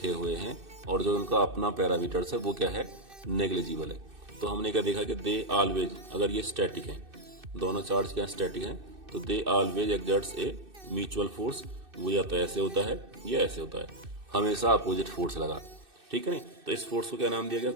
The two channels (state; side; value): late; left; 2.6 ms